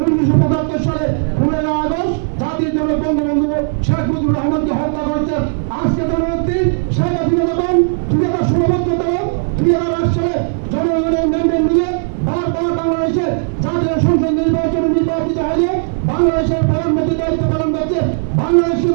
1975 সালে 15 আগস্ট জাতির জনক বঙ্গবন্ধু শেখ মুজিবুর রহমানকে হত্যা করেছে। আজকে জননেত্রী শেখ হাসিনা যখন 2008 সালে জনগণের ম্যান্ডেট নিয়ে বারবার বাংলাদেশে জাতীয় সংসদ নির্বাচনে নির্বাচিত হয়ে বাংলাদেশের প্রধানমন্ত্রীর দায়িত্ব পালন করছে, বাংলাদেশে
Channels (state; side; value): silent; left; 58 dB below the other